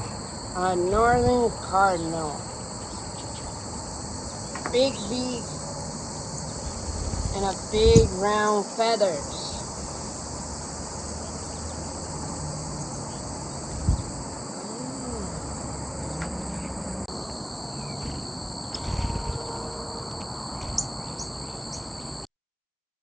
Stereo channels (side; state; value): both; identical; correlation 1.00